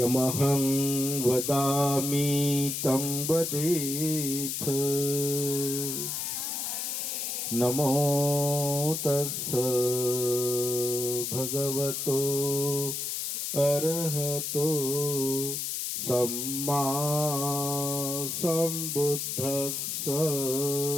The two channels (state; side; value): noise; left; hiss, 3 dB below the sound